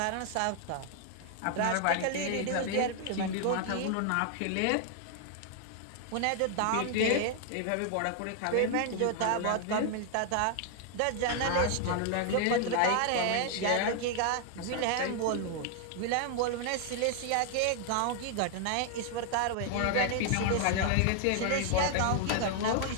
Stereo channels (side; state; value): both; different; correlation 0.00